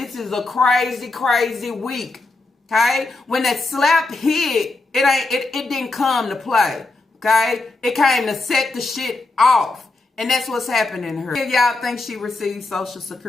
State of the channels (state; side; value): quieter; right; 3.2 dB